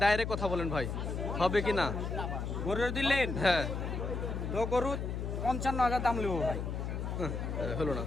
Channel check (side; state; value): left; noise; hum, 3 dB below the sound